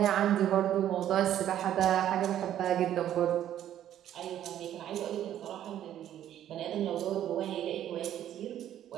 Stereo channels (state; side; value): quieter; left; 11.3 dB